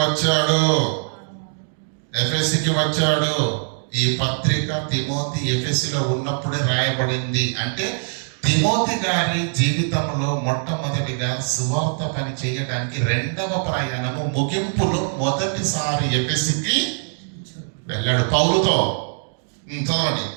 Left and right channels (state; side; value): silent; left; digital silence